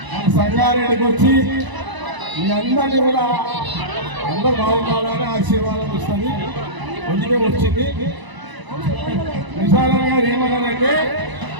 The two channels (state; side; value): late; left; 1.0 ms